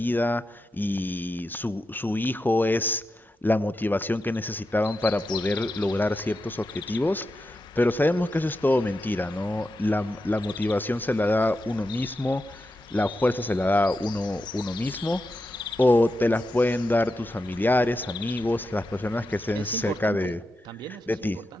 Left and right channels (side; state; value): both; normal; correlation 0.88